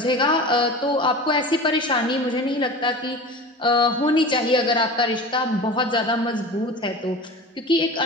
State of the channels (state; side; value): normal; both; correlation 0.34